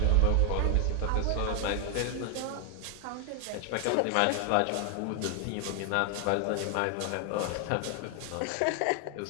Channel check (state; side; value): different; both; correlation 0.00